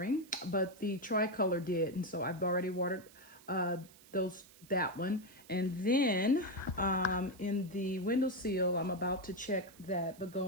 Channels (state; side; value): noise; right; hiss, 23 dB below the sound